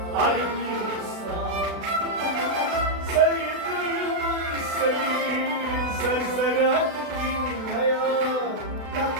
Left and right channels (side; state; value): left; late; 36 ms